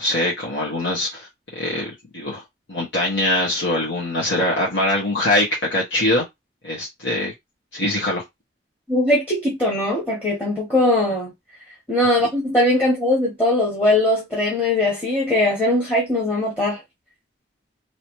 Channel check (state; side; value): normal; both; correlation 0.30